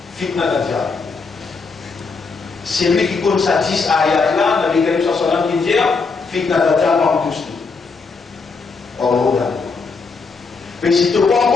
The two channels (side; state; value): right; quieter; 4.6 dB